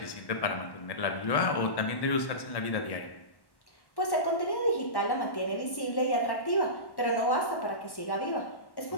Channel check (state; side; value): late; right; 1.1 ms